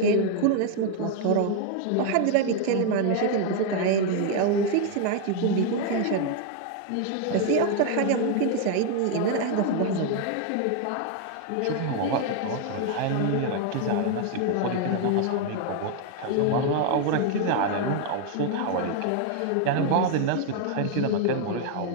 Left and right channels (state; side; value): different; both; correlation 0.00